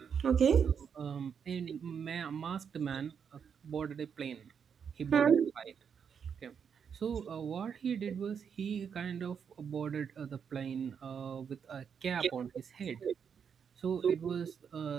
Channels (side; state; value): left; quieter; 7.1 dB